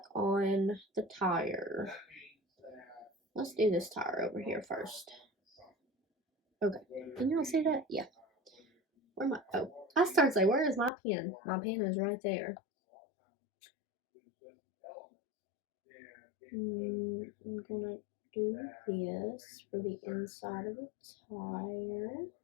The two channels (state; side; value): drops out; right; at 10.9 s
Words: on the tire. Let's do this tire over here first. Okay, can y'all see that? Yeah. I started to say, where is my pen? My pen is right there. I'm gonna do this for the inside of the tire.